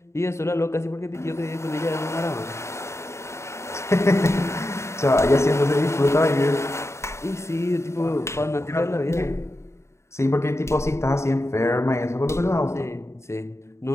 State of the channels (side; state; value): right; late; 0.13 ms